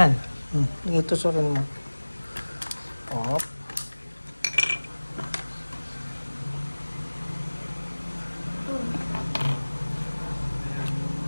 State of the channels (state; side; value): inverted; both; correlation -1.00